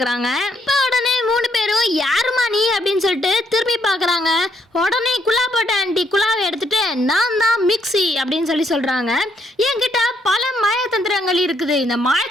இப்போ உடனே 3 பேரும் யாருமா நீ அப்படின்னு சொல்லிட்டு திரும்பி பார்க்குறாங்க. உடனே குலாப்போட்ட ஆண்டி குலாவை எடுத்துட்டு நான் தான் மிக்ஸி அப்படின்னு சொல்றாங்க. என்கிட்ட பல மாயத்தந்திரங்கள் இருக்குது, இந்த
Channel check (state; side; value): normal; both; correlation 0.72